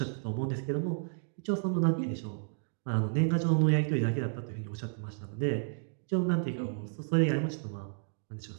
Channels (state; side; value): silent; left; digital silence